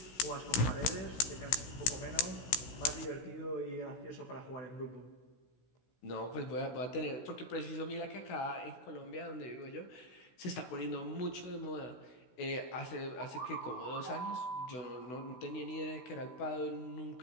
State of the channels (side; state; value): right; late; 16 ms